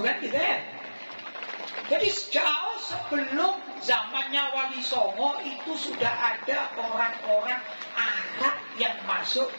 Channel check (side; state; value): both; inverted; correlation -1.00